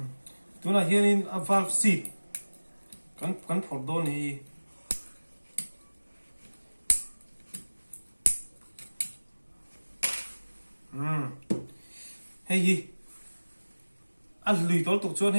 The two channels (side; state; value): both; inverted; correlation -1.00